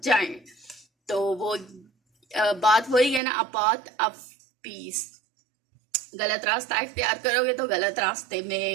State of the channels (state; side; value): drops out; left; at 3.2 s